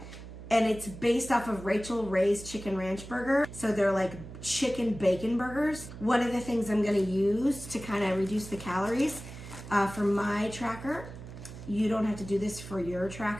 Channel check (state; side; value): noise; right; hum, 13 dB below the sound